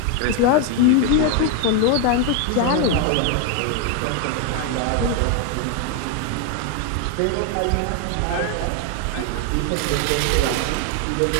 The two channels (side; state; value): both; different; correlation 0.01